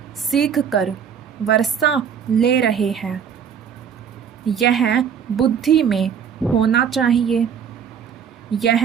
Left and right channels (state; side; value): quieter; left; 7.7 dB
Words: सीख कर वर्षा ले रहे हैं। यह बुद्धि में होना चाहिए।